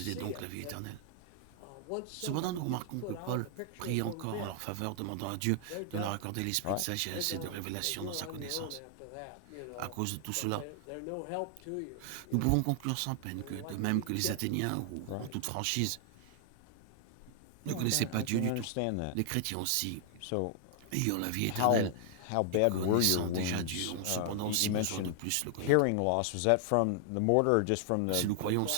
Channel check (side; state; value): both; different; correlation 0.00